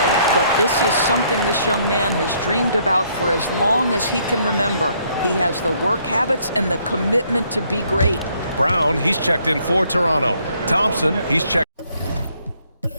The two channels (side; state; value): both; inverted; correlation -0.68